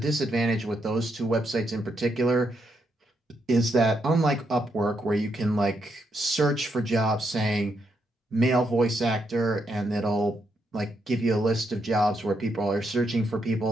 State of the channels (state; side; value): normal; both; correlation 0.79